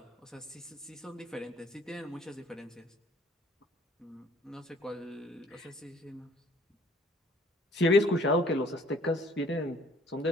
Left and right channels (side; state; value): both; normal; correlation 0.57